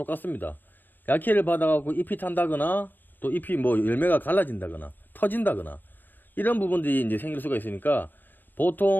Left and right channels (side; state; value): right; late; 0.092 ms